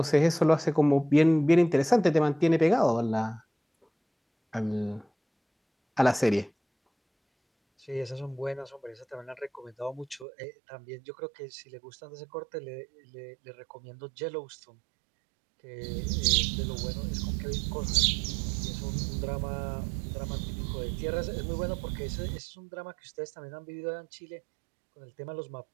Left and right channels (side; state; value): left; drops out; at 10.2 s